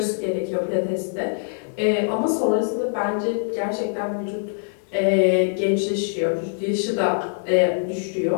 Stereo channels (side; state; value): right; silent; digital silence